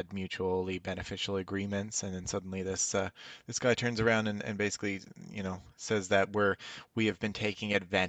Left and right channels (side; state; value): both; identical; correlation 1.00